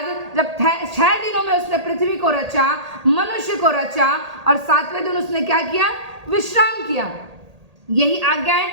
जब 6 दिनों में उसने पृथ्वी को रचा, मनुष्य को रचा, और 7वें दिन उसने क्या किया, विश्राम किया। यही आज्ञाएं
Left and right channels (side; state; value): left; late; 1.8 ms